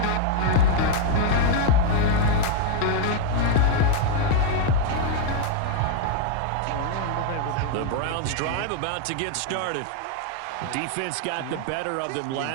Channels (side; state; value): both; different; correlation 0.00